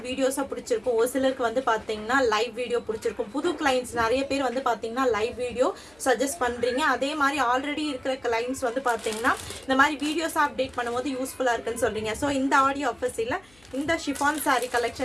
வீடியோஸாக பிடிச்சிருக்கும், ஒரு சிலருக்கு வந்து பார்த்தீங்கன்னா லைவ் வீடியோ பிடிச்சிருக்கும். புது கிளைண்ட்ஸ் நிறைய பேர் வந்து பார்த்தீங்கன்னா லைவ் வீடியோ சஜஸ்ட் பண்ணுறீங்க. அதே மாதிரி ஆல்ரெடி இருக்கிற கிளைண்ட்ஸ் வந்து பார்த்தீங்கன்னா இந்த மாதிரி வீடியோஸாக அப்டேட் பண்ணும்போது யூஸ்ஃபுல்லாக இருக்குன்னு சொல்கிறீங்க. ஸோ இந்த ஆடியோ ஆஃபர்ஸில் இந்த ஷிஃபான் சாரீ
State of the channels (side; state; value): left; noise; hum, 29 dB below the sound